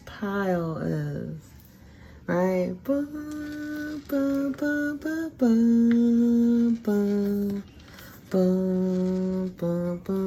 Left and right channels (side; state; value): both; identical; correlation 1.00